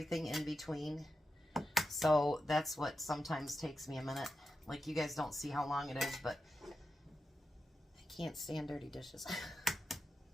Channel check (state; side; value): normal; both; correlation 0.89